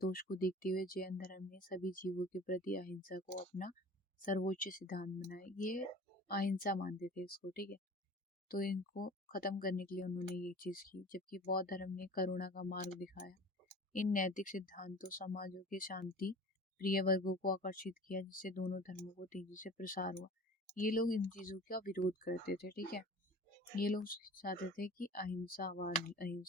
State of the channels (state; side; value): normal; both; correlation 0.41